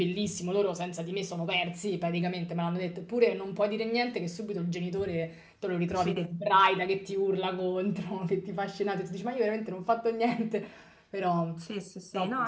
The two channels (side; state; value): both; identical; correlation 1.00